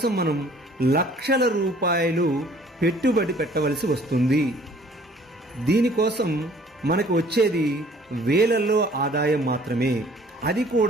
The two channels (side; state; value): both; normal; correlation 0.55